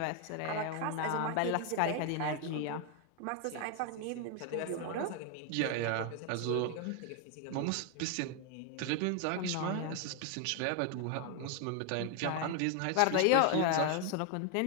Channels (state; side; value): different; both; correlation 0.01